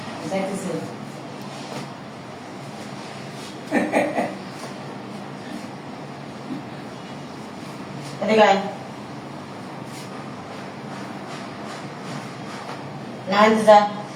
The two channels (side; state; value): both; identical; correlation 1.00